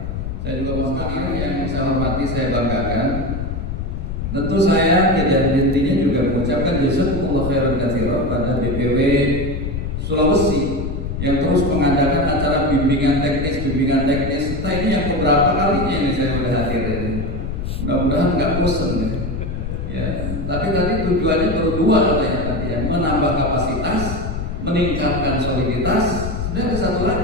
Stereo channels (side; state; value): left; noise; rumble, 4 dB below the sound